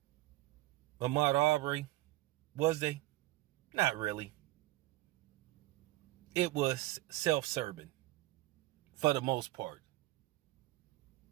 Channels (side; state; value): left; quieter; 18.2 dB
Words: Arbery? Was they? Not really. It was self-serving for the most part.